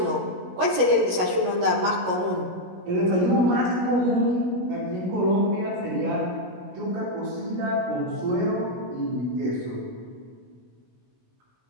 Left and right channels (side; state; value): left; late; 16 ms